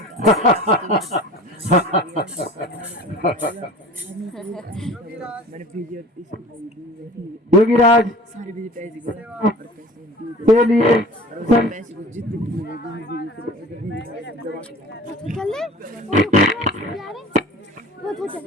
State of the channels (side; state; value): both; normal; correlation 0.43